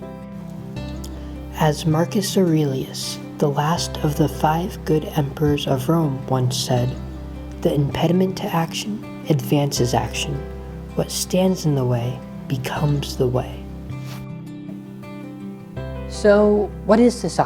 As Marcus Aurelius, the last of the 5 good emperors of Rome, once said, "The impediment to action advances action. What stands in the way becomes the way." So, what is this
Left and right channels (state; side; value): identical; both; correlation 1.00